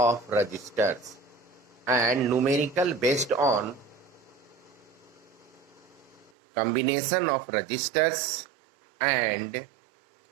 resistors, and numerical based on combination of resistors and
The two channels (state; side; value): drops out; left; at 6.3 s